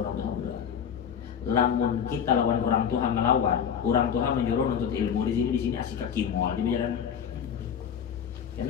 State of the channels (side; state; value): right; quieter; 8.0 dB